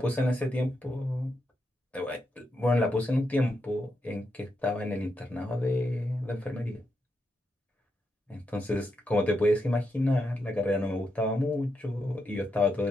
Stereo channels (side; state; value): both; normal; correlation 0.83